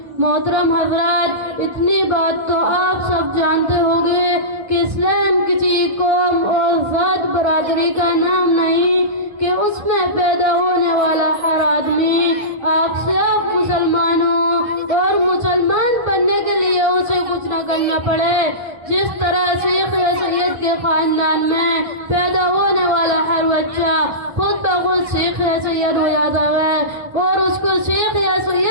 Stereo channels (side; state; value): left; late; 1.3 ms